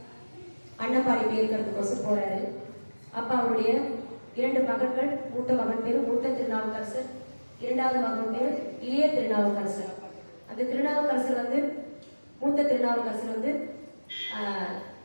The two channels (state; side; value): inverted; both; correlation -1.00